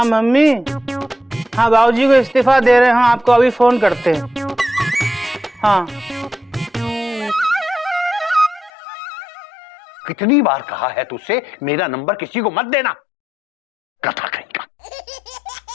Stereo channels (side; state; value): right; drops out; at 8.7 s